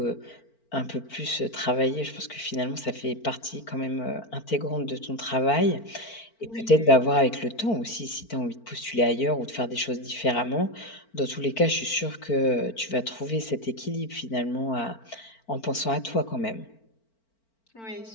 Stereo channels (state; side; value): late; right; 4.4 ms